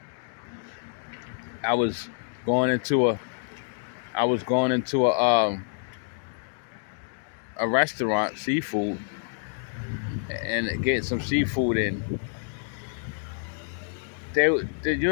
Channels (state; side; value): silent; right; digital silence